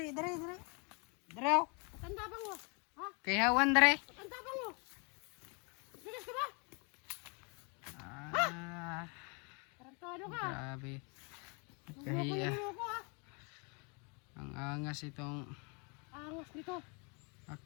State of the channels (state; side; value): quieter; right; 33.7 dB